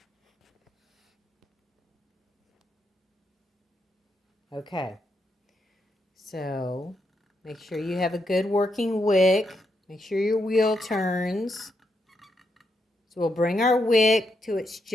Okay, so make sure you have a good working wick. Make sure your wheel turns. So we'll bring our wick to it's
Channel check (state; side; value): normal; both; correlation 0.81